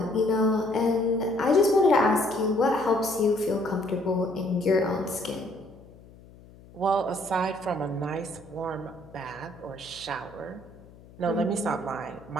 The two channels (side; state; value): left; noise; hum, 22 dB below the sound